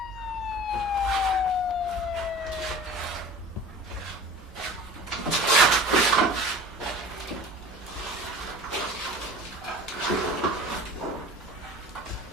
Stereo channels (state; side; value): normal; both; correlation 0.40